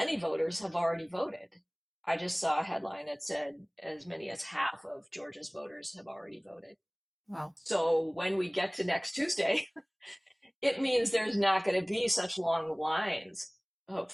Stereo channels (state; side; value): identical; both; correlation 1.00